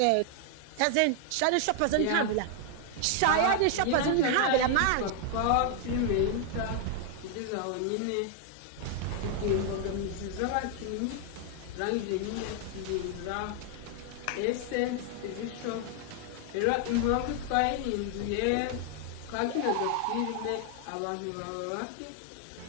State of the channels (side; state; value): both; different; correlation 0.00